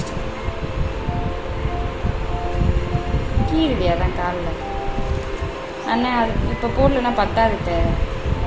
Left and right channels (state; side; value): identical; both; correlation 1.00